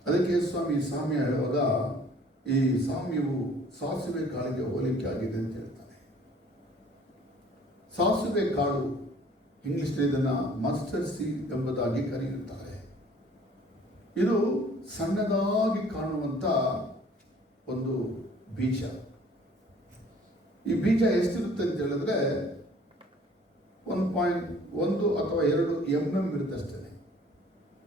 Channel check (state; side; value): normal; both; correlation 0.54